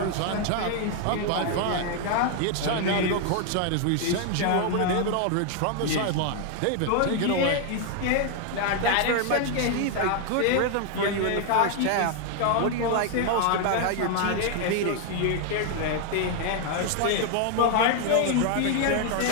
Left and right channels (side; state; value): both; different; correlation 0.00